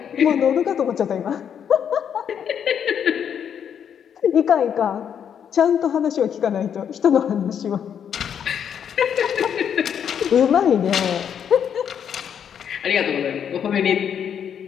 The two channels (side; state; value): right; quieter; 8.3 dB